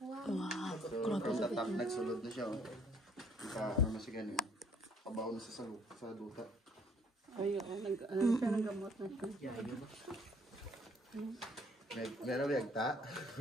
So from the top nagsulod na siya. Ano na siya ganyan. Pabaw na siya sa duta. Ayun, ano siya, naggamot na siya. Meron yagta.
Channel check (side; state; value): both; normal; correlation 0.62